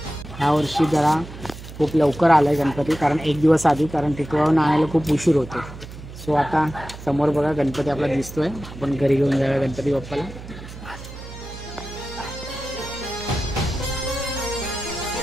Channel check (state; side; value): noise; right; hum, 14 dB below the sound